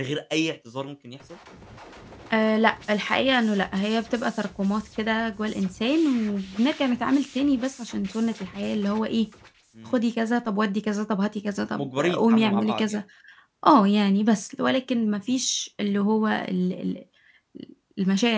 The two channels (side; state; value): both; identical; correlation 1.00